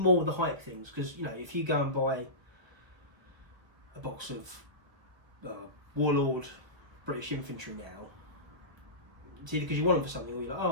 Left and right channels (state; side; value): late; left; 1.1 ms